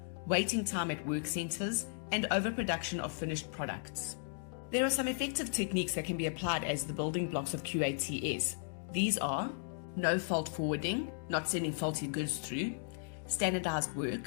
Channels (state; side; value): silent; right; digital silence